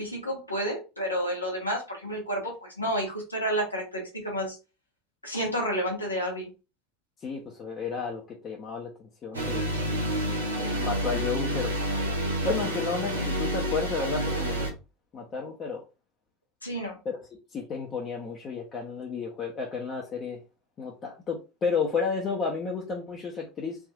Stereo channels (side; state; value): both; normal; correlation -0.06